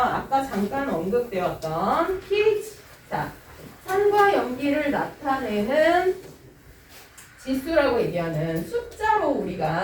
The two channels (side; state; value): both; identical; correlation 1.00